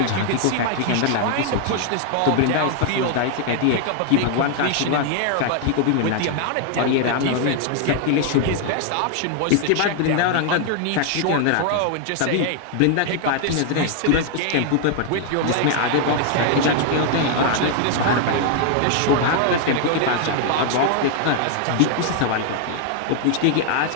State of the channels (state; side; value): different; both; correlation 0.00